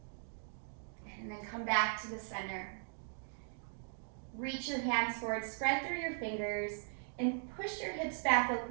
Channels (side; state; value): left; silent; digital silence